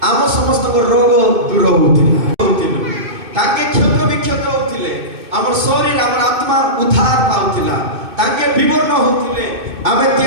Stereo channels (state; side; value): late; left; 2.6 ms